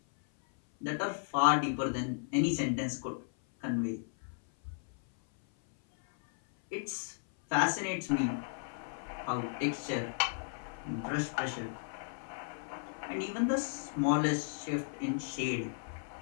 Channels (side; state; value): right; silent; 55 dB below the other